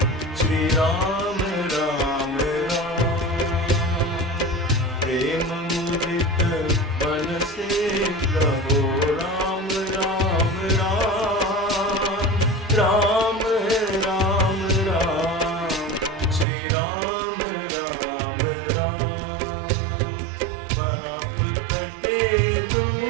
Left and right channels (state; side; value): drops out; left; at 16.4 s